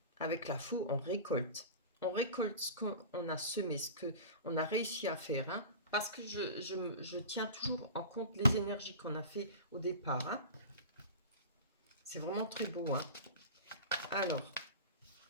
Avec la faux, on récolte. On récolte ce qu'on a semé, ce qu'on a réussi à faire, hein, parce que je tiens toujours en compte les énergies qu'on a fait au départ, hein. C'est vraiment très beau, hein. Alors,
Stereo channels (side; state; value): both; inverted; correlation -0.33